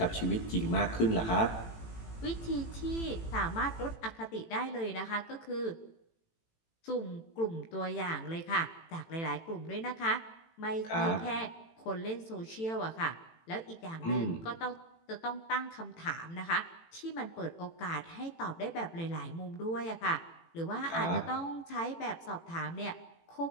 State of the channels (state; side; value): late; right; 18 ms